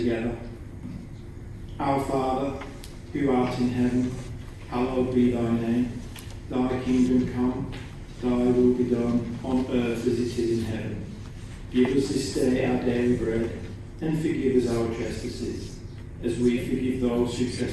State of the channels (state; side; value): identical; both; correlation 1.00